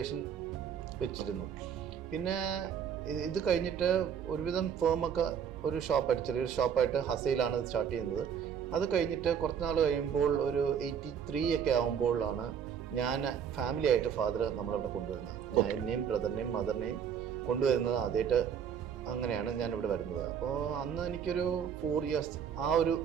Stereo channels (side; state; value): left; quieter; 7.9 dB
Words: വെച്ചിരുന്നു. പിന്നെ ഇത് കഴിഞ്ഞിട്ട് ഒരുവിധം ഫേമൊക്കെ ഒരു ഷോപ്പായിട്ട്, ചെറിയൊരു ഷോപ്പായിട്ട് ഹസയിലാണ് ഇത് സ്റ്റാർട്ട് ചെയ്യുന്നത്. അത് കഴിഞ്ഞിട്ട് കുറച്ച് നാൾ കഴിയുമ്പോൾ ഒരു 83 ഒക്കെ ആകുമ്പോഴാണ് ഞാൻ ഫാമിലി ആയിട്ട് ഫാദർ നമ്മളിവിടെ കൊണ്ടുവരുന്നത്. ഞാൻ എന്നെയും ബ്രദറിനെയും മദറിനെയും കൊണ്ടുവരുന്നത് ആദ്യമായിട്ട്. അങ്ങനെയാണ് ഞാനിവിടെ വരുന്നത്. അപ്പോൾ അന്ന് എനിക്കൊരു 4 years ആ ഒരു